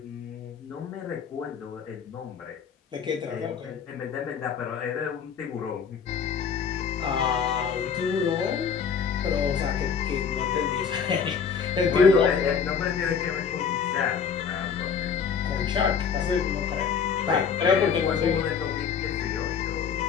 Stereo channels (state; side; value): quieter; right; 6.6 dB